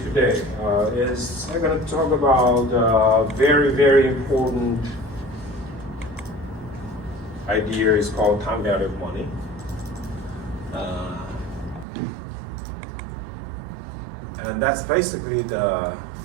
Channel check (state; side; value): drops out; left; at 11.9 s